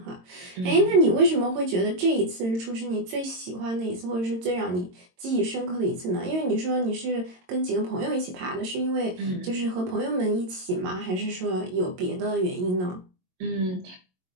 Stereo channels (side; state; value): left; late; 22 ms